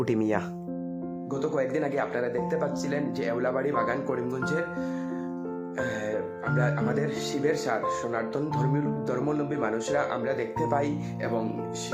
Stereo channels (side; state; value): both; identical; correlation 1.00